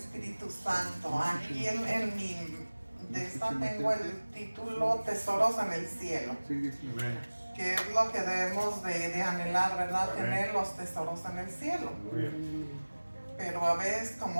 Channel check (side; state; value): both; inverted; correlation -1.00